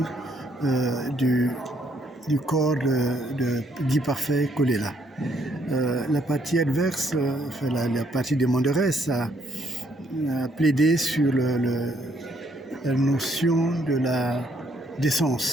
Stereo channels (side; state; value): both; normal; correlation 0.69